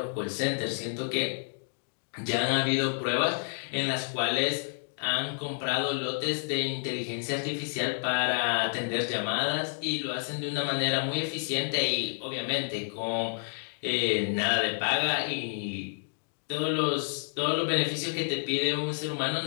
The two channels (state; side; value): silent; right; digital silence